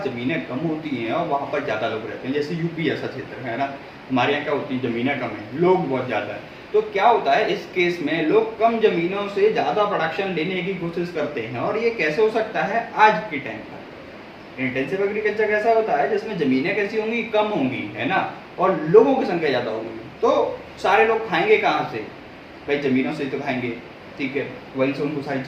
ज़मीनें कम होती हैं और वहाँ पर ज़्यादा लोग रहते हैं, जैसे यूपी ऐसा क्षेत्र है ना, हमारे यहाँ क्या होती है, ज़मीनें कम है, लोग बहुत ज़्यादा है। तो क्या होता है इस केस में, लोग कम ज़मीनों से ज़्यादा प्रोडक्शन लेने की कोशिश करते हैं, और ये कैसे हो सकता है, आज के टाइम पर इंटेंसिव एग्रीकल्चर कैसा होता है जिसमें ज़मीनें कैसी होंगी, कम होंगी, है ना, और लोगों की संख्या ज़्यादा होगी, तो सारे लोग खाएंगे कहाँ से, भाई ज़मीनों से तो खाएंगे, ठीक है, वहीं से उनको सारी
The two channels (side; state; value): both; identical; correlation 1.00